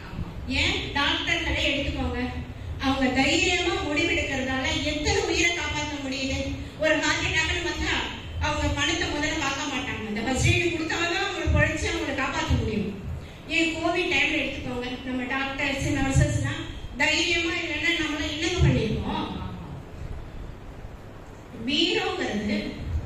ஏன் டாக்டர்களே எடுத்துக்கோங்க, அவங்க தைரியமா முடிவெடுக்கிறதால எத்தனை உயிரை காப்பாற்ற முடியுது. ஒரு ஹார்ட் அட்டாக்னு வந்தா அவங்க பணத்தை முதல்ல பார்க்க மாட்டாங்க, அந்த ஃபர்ஸ்ட் எய்டு கொடுத்தாதான் அவங்களை பொழைச்சு அவங்களை காப்பாற்ற முடியும். ஏன் கோவிட் டைம்ல எடுத்துக்கோங்க, நம்ம டாக்டர்ஸ் நர்சஸ்லாம் தைரியமா இல்லைன்னா நம்மள என்னங்க பண்ணிருக்கோம். வீரங்கிறது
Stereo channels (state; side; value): identical; both; correlation 1.00